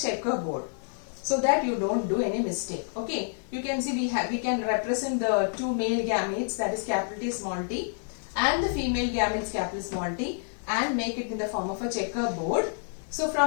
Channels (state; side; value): silent; right; 59 dB below the other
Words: so that you don't do any mistake. Okay, you can see we can represent the 2 male gametes, that is capital T small t, and the female gametes capital small t, and make it in the form of a checkerboard. So